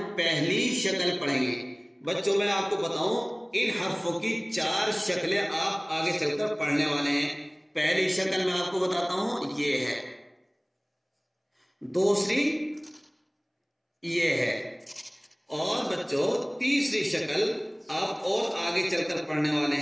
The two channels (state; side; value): identical; both; correlation 1.00